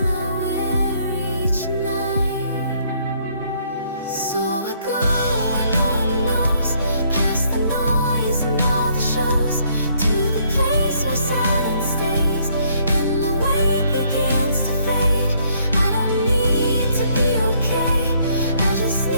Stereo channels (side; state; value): both; inverted; correlation -0.67